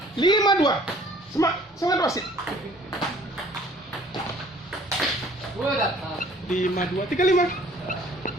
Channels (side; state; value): both; normal; correlation 0.55